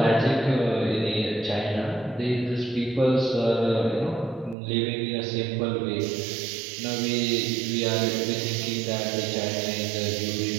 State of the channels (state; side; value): drops out; left; at 4.5 s